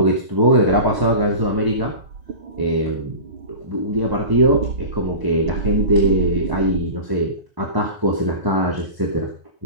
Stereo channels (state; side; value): late; left; 1.0 ms